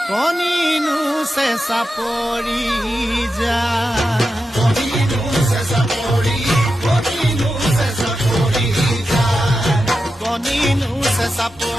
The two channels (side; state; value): both; normal; correlation 0.89